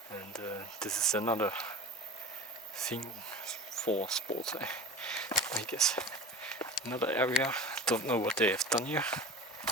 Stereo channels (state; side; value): normal; both; correlation 0.34